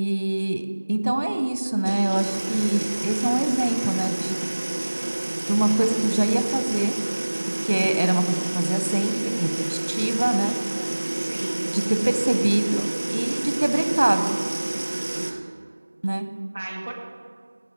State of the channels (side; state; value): both; inverted; correlation -1.00